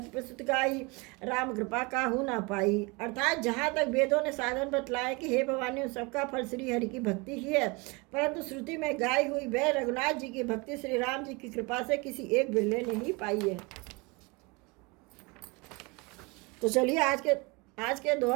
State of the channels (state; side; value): quieter; left; 27.3 dB